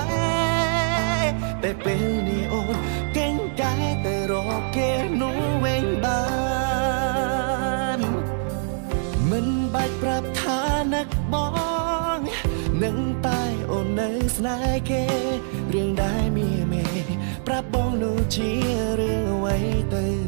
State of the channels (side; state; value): left; silent; digital silence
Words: រតែពេលនេះអូនកេងកែទៅរកគេនោះវិញបានមិនបាច់ប្រាប់ថានឹកបងនឹងតែអូននៅស្នេហ៍គេរឿងដែលមានមេប្រាប់បងនោះជារឿងអ្វីទៅ